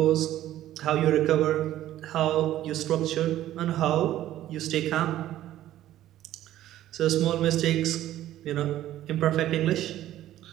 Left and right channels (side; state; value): left; quieter; 13.4 dB